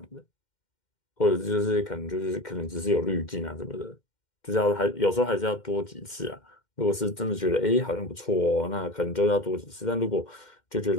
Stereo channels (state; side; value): late; right; 2.1 ms